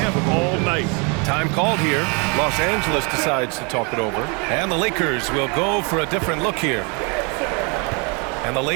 all night. Time called here. Los Angeles decides to talk it over. And the Lakers will go for a different look here. And the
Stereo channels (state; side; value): quieter; left; 33.0 dB